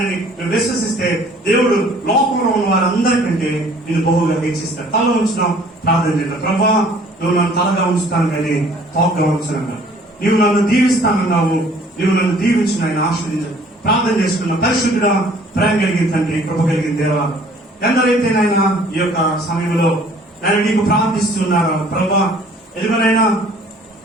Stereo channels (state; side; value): normal; both; correlation 0.55